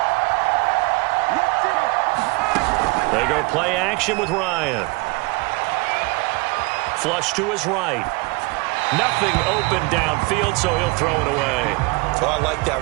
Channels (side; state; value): left; quieter; 26.9 dB